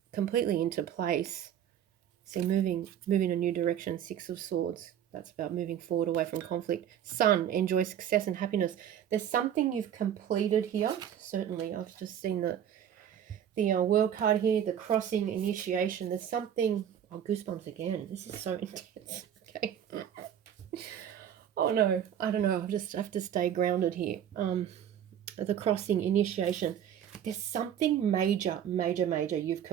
completely into place. See, moving a new direction, Six of Swords. That's about moving forward away from conflict. Sun, enjoy success and happiness. There's something you've completed here. Certainly, I've just seen the World card here, the crossing, initiation. There's something, oh, goosebumps again. This is so intense. Okay. Oh no, I don't know. I'll just have to stay grounded here. The crossing, initiation. There's something major you've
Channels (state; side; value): quieter; left; 9.7 dB